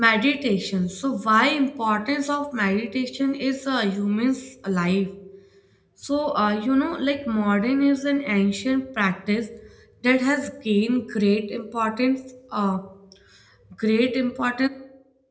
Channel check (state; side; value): identical; both; correlation 1.00